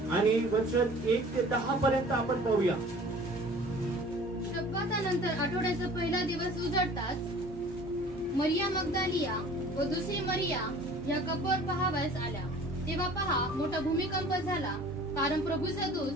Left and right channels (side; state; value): both; normal; correlation 0.47